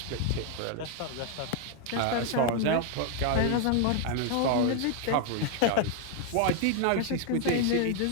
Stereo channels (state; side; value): different; both; correlation 0.00